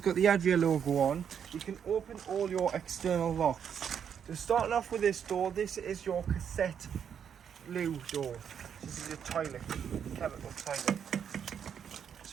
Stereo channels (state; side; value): quieter; left; 8.0 dB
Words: got the Adria logo on, you can open all your external locks. So starting off with this door, this is your cassette loo door. This is your toilet, chemical toilet.